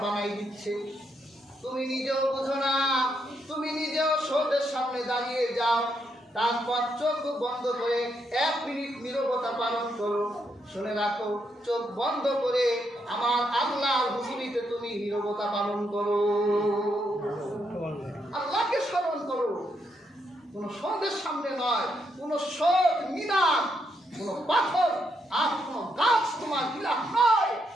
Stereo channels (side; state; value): both; normal; correlation 0.79